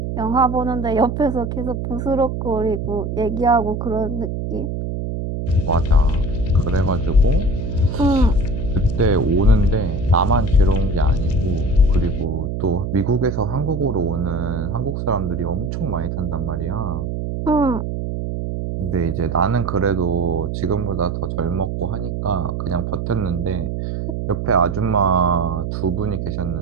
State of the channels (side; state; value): right; noise; hum, 3 dB below the sound